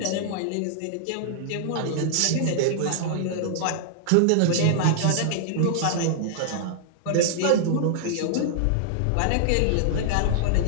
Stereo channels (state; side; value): different; both; correlation -0.01